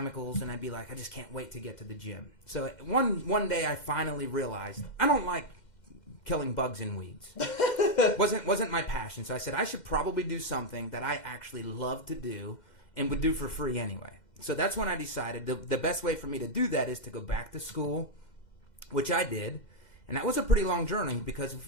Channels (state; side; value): late; right; 2.1 ms